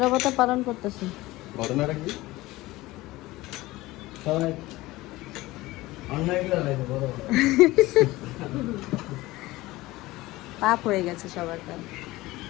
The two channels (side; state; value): right; quieter; 18.9 dB